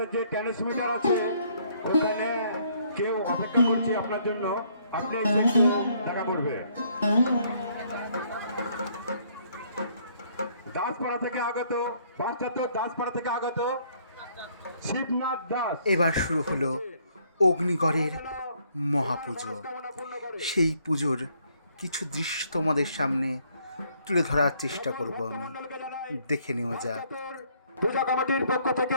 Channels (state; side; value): inverted; both; correlation -0.66